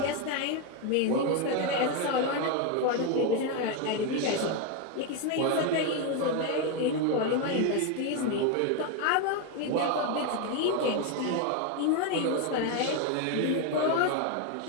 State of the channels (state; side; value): different; both; correlation 0.02